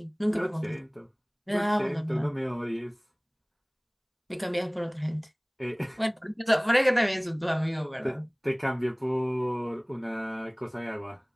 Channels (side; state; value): both; identical; correlation 1.00